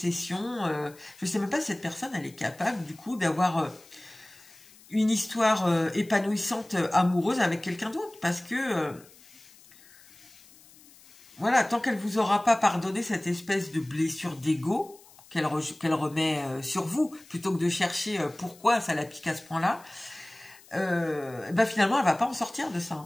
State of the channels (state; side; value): noise; left; hiss, 24 dB below the sound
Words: Je ne sais même pas si cette personne, elle est capable, du coup, d'avoir une histoire épanouissante, amoureuse avec quelqu'un d'autre. Parce que, voilà, tant qu'elle ne vous aura pas pardonné cette espèce de blessure d'ego qu'elle remet sur vous, plutôt que de chercher pourquoi ça la pique à ce point-là, ben finalement, elle ne va pas en sortir de